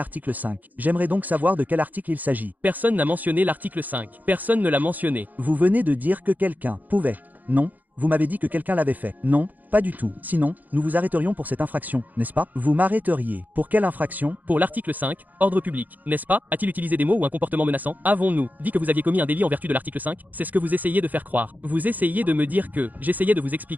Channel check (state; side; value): late; left; 0.082 ms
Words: 5. J'aimerais donc savoir de quel article il s'agit. Personne n'a mentionné l'article 5. Personne ne l'a mentionné. Vous venez de dire que quelqu'un pouvait. Non, vous m'avez dit que quelqu'un l'avait fait. Non, pas du tout. Sinon, nous vous arrêterions pour cette infraction, n'est-ce pas? Vous m'arrêteriez. Pour quelle infraction? Pour l'article 5, ordre public, n'est-ce pas? A-t-il utilisé des mots ou un comportement menaçant? Avons-nous dit que vous aviez commis un délit en vertu de l'article 5? C'est ce que vous essayez de faire croire. Vous essayez de me dire que... J'essayais de vous